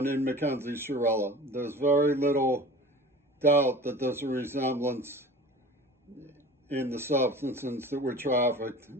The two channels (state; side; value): normal; both; correlation 0.39